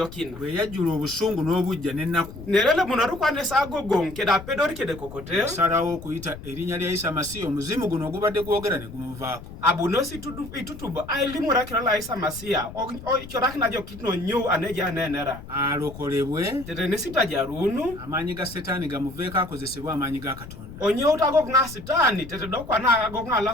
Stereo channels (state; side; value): noise; left; rumble, 14 dB below the sound